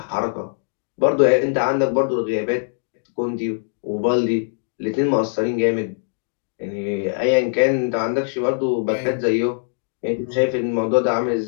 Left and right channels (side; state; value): right; silent; digital silence